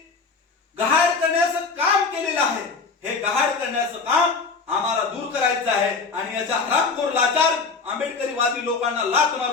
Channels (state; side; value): quieter; right; 4.6 dB